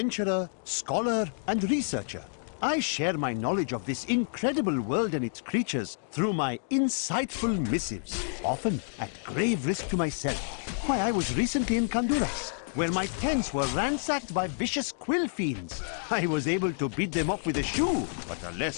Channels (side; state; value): right; silent; digital silence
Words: scholar, and researcher. I share my knowledge of this incredible world and its creatures through my insightful missives, often at grave risk to myself. Why, I was recently in Honduras, where my tents were ransacked by vicious quill fiends. I was able to beat them off with a shoe, but a